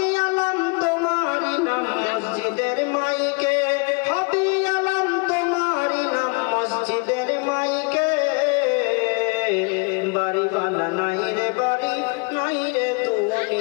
আলাম তোমারই নাম মসজিদের মাইকে, হবে আলাম তোমারই নাম মসজিদের মাইকে। বাড়িওয়ালা নাই রে বাড়ি, নাই রে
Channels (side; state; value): right; quieter; 31.1 dB